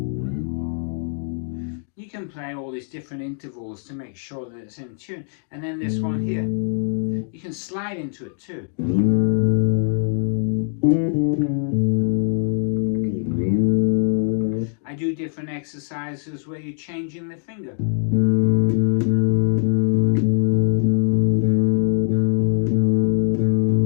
You can play all these different intervals to make sure that it's in tune. And then this one here, you can slide into it too. I do different exercises where you're changing the finger.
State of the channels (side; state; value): right; silent; 64 dB below the other